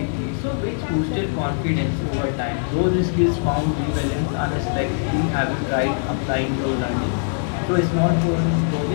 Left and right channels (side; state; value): right; silent; 64 dB below the other